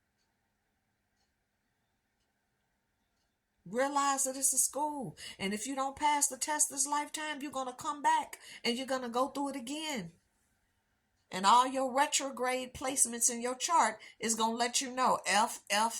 Realize that it's a school. And if you don't pass the test this lifetime, you're going to come back and you're going to go through it again. And all your retrograde placements in your chart is going to let you know F,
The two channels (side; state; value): both; identical; correlation 1.00